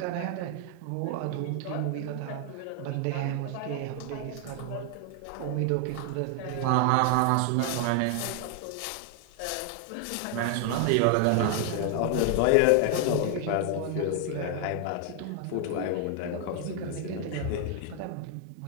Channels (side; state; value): both; different; correlation 0.00